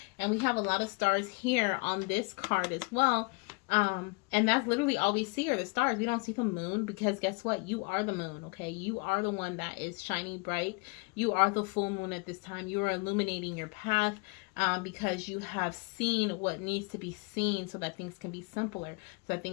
and we have a lot of stars here on this card as well. And that's literally all we see are the stars. We don't see the moon, because guess what? You are the moon, okay? You are the one that is shining bright. You are the full moon at this time. You are illuminating your path, because you have seen what needs to be seen so that things can be simpler, so that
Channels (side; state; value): right; quieter; 29.5 dB